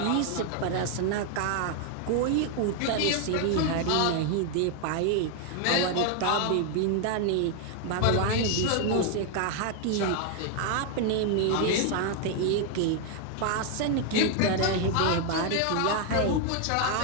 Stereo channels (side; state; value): both; different; correlation 0.00